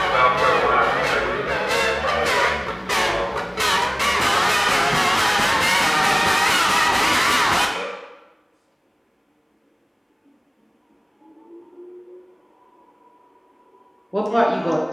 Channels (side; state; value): both; identical; correlation 1.00